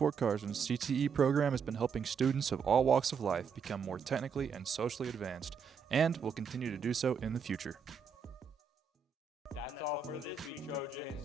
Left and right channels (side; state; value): left; quieter; 6.1 dB